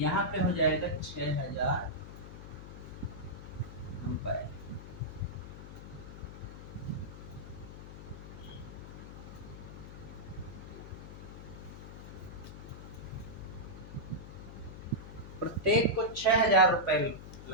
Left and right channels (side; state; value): left; noise; hum, 12 dB below the sound